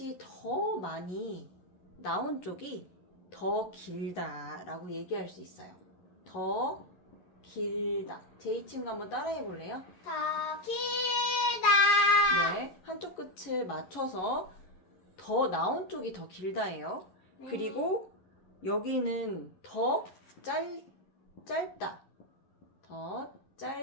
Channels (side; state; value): right; late; 11 ms